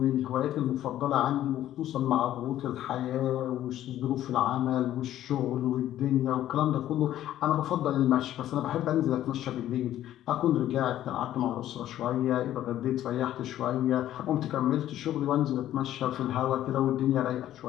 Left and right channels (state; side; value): quieter; right; 12.6 dB